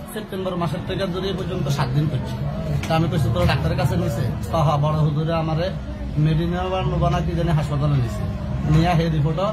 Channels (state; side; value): identical; both; correlation 1.00